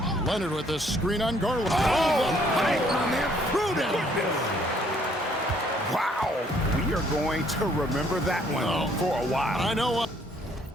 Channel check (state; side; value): normal; both; correlation 0.64